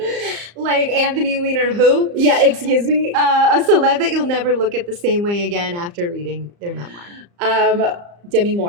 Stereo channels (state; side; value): late; left; 34 ms